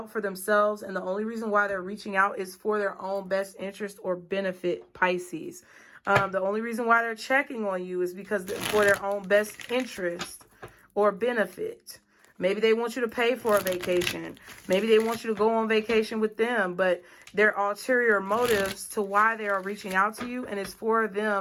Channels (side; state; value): both; identical; correlation 1.00